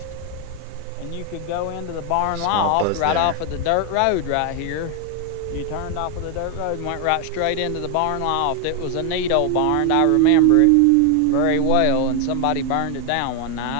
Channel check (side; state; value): both; different; correlation 0.00